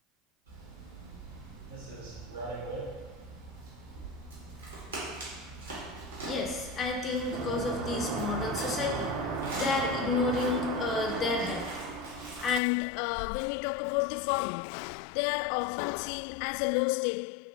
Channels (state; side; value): drops out; right; at 12.6 s